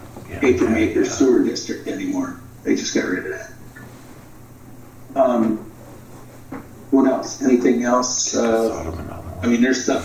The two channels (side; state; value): both; identical; correlation 1.00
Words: Paper Maker Sewer District anymore. They just got rid of that. What else? Anything else? I mean, there's stuff